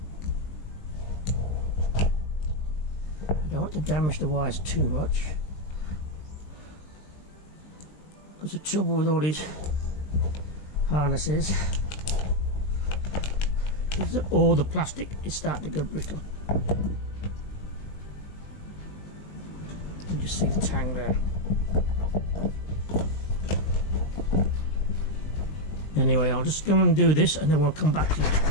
I don't want to damage the wires too much, because the trouble with all these harnesses is that all the plastic is starting to go brittle. You can just see the tang there. Anyway, I'll just go and do this and then we'll come back to you.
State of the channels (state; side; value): late; right; 20 ms